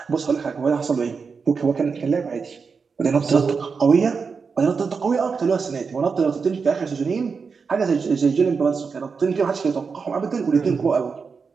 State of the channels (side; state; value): left; quieter; 5.3 dB